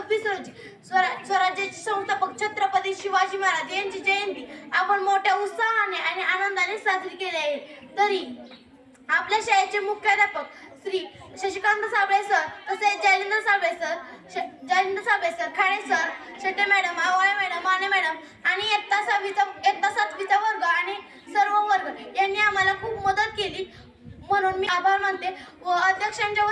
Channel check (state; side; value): identical; both; correlation 1.00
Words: रोजी स्वराज्याचे संस्थापक छत्रपती शिवाजी महाराज यांची जयंती आपण मोठ्या उत्साहाने आणि आनंदाने साजरी केली आहे. तरी आपल्या शाळेचे मुख्याध्यापक श्री शशिकांत साबळे सर, तसेच Jalindar Sable sir, Khade sir, Shete madam, Awale madam, Mane madam आणि इयत्ता 7वीचा वर्ग आणि सर्व वर्ग यांनी आम्हाला खूप मदत केली, म्हणून मी आभार मानते व अध्यक्षांच्या